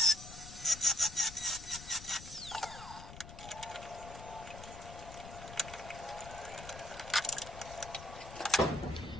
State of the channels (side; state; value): left; noise; rumble, 13 dB below the sound